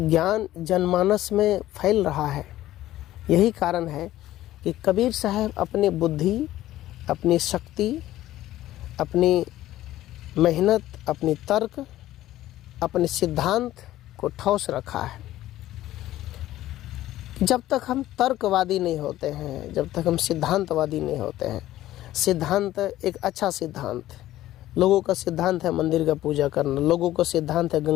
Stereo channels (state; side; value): quieter; right; 14.5 dB